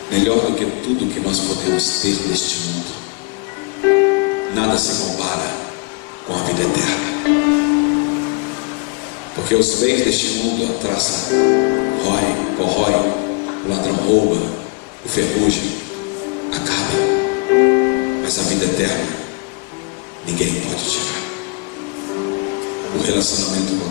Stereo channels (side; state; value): right; quieter; 33.1 dB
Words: melhor do que tudo que nós podemos ter neste mundo, nada se compara com a vida eterna. Porque os bens deste mundo, a traça corrói, o ladrão rouba, o ferrugem acaba, mas a vida eterna ninguém pode tirar. O relacionamento com